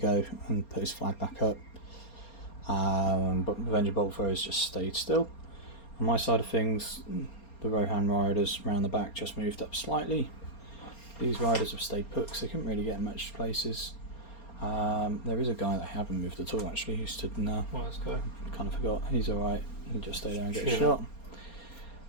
and put his flag back up. But Avenger Boltthrows just stayed still. On my side of things, the Rohan riders round the back just moved up slightly. These riders have stayed put because they couldn't really get much places. There is a guy that I haven't moved at all actually who stood in there. Well, let's go. Kind of forgot. He's alright. He just stay there and get Sure.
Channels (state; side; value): late; right; 4.3 ms